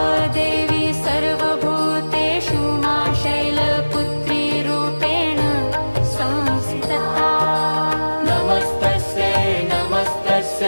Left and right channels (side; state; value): both; inverted; correlation -1.00